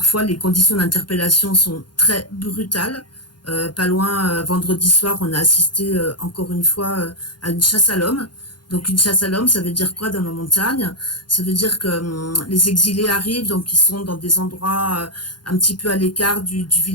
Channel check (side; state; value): right; late; 0.71 ms